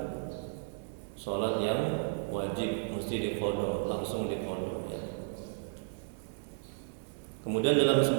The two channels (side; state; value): left; silent; digital silence